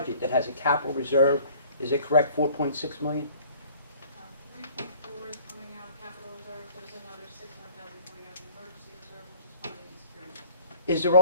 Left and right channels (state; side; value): inverted; both; correlation -0.52